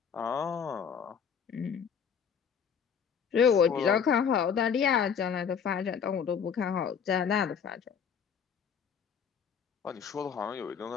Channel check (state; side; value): quieter; right; 7.2 dB